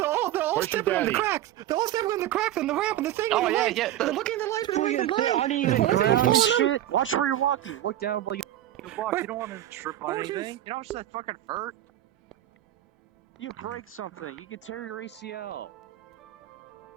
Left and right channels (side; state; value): left; quieter; 13.2 dB